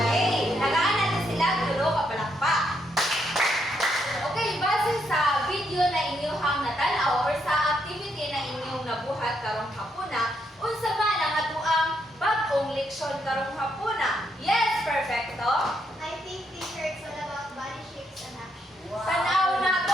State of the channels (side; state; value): both; normal; correlation 0.77